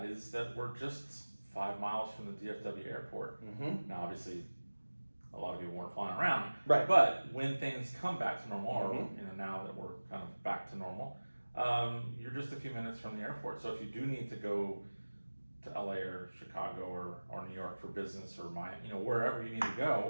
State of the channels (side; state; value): both; inverted; correlation -1.00